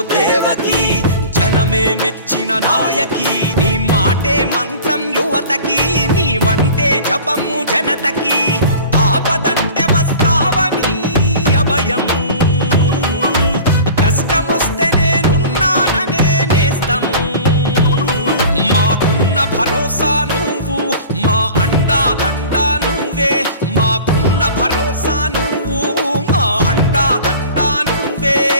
దేవకి, జనమే మెచ్చిన నాయకి. నీ మాటే మంత్రం యువతకి, నీ వంటే జపము జనతకి. ఆపదంటే వస్తావని అభయం, కష్టమొస్తే నేనున్నాననే నేస్తము. మాకున్న భరోసా నువ్వు, మా అండా దండా నువ్వే. మాకున్న భరోసా నువ్వు,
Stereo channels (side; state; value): both; inverted; correlation -0.41